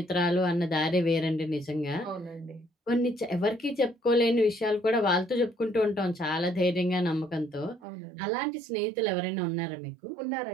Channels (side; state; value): left; drops out; at 7.9 s